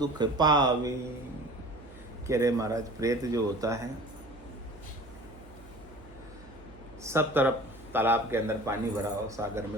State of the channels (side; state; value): right; noise; hum, 21 dB below the sound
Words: पावे। कह रहे महाराज, प्रेत जो होता है, सब तरफ तालाब के अंदर पानी भरा हो, सागर